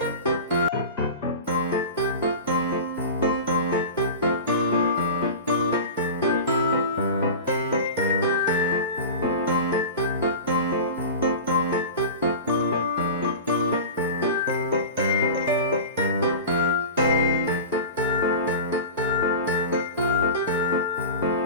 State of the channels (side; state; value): both; inverted; correlation -0.31